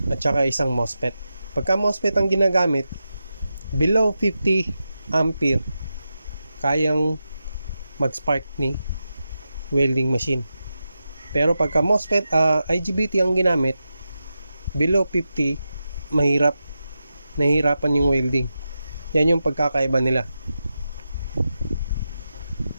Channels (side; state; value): both; inverted; correlation -0.90